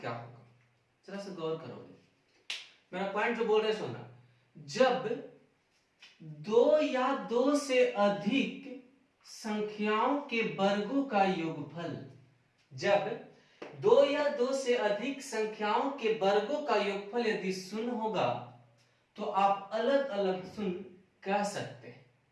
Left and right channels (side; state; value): both; identical; correlation 1.00